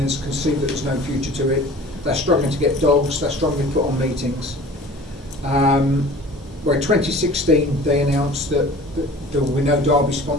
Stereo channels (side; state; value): both; normal; correlation 0.44